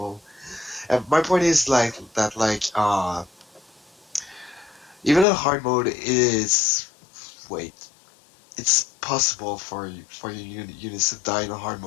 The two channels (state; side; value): drops out; right; at 5.2 s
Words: And my point is even in hard mode is... Wait. it's possible for your units to die in a hard